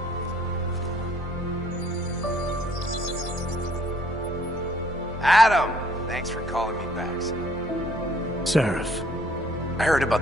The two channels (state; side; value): normal; both; correlation 0.62